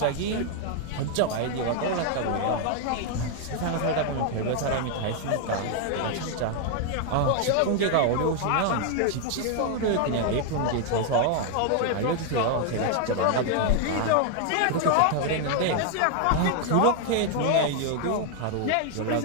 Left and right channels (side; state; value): both; different; correlation 0.00